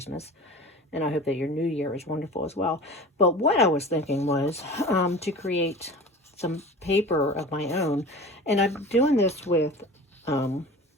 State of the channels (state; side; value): normal; both; correlation 0.37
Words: and I hope that your new year is wonderful as well. But what I was thinking was to create some paper of my own, and I'm doing this with